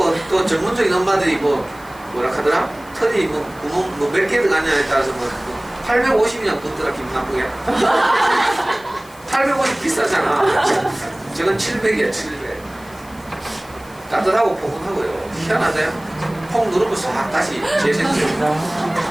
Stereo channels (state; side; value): noise; left; hiss, 24 dB below the sound